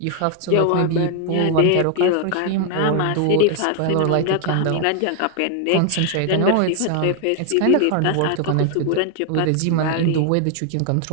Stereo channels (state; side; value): different; both; correlation 0.00